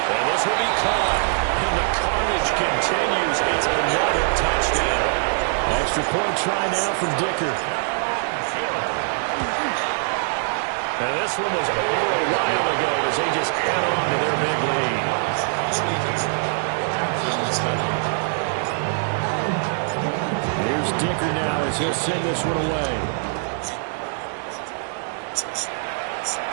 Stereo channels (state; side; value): silent; left; 63 dB below the other